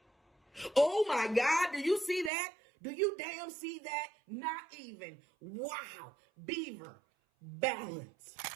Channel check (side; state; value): left; drops out; at 2.3 s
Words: Oh my God, do you see that? Do you damn see that? Not even. Wow. Beaver. Balance.